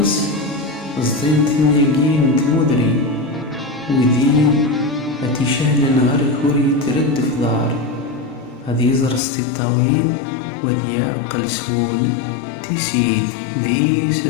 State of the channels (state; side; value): drops out; right; at 9.2 s